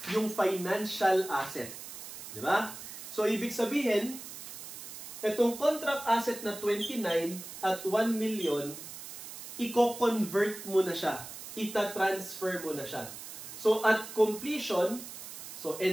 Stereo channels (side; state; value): right; noise; hiss, 11 dB below the sound